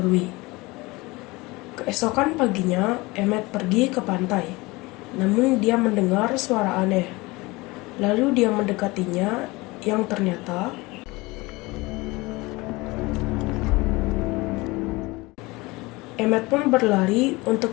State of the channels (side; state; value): right; quieter; 22.8 dB